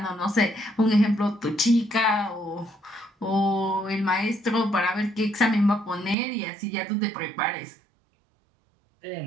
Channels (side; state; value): left; drops out; at 6.2 s